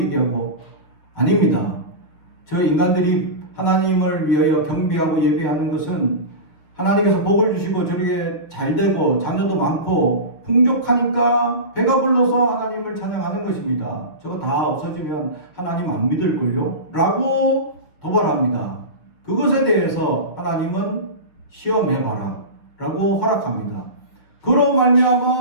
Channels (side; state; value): right; late; 6.3 ms